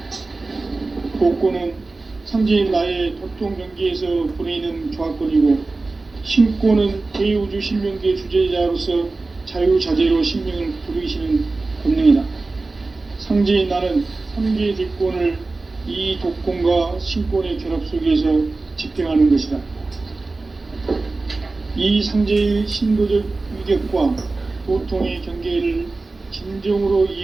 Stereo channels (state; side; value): quieter; left; 3.5 dB